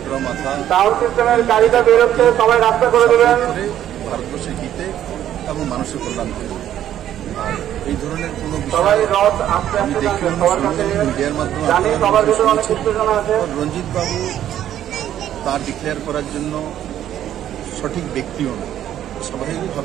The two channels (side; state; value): left; quieter; 11.3 dB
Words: মাথা ভারতবর্ষের হিতে এবং মানুষের কল্যাণ করবে। আর এই ধরনের কোনো বিষয় আমি দেখলাম মিডিয়ার মাধ্যমে রঞ্জিত বাবু তা ডিক্লেয়ার করার জন্য সঠিক ব্যক্তিও না।